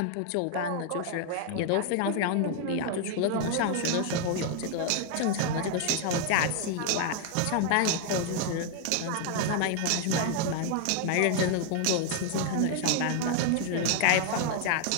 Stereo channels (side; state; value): both; different; correlation 0.00